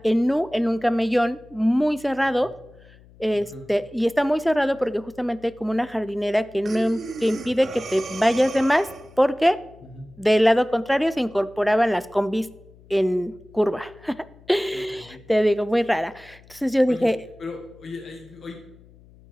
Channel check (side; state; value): left; noise; hum, 25 dB below the sound